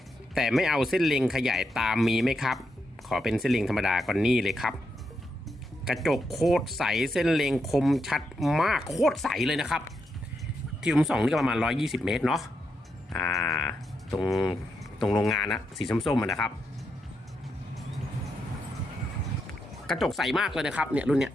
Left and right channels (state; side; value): normal; both; correlation 0.83